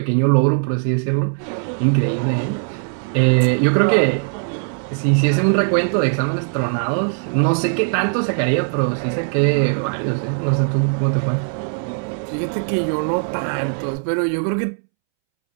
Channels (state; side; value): silent; left; 66 dB below the other